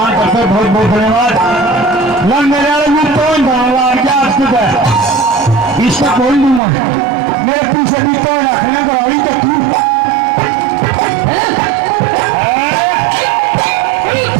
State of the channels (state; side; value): drops out; left; at 6.6 s